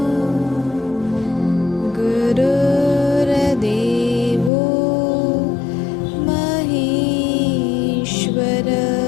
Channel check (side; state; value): right; drops out; at 4.5 s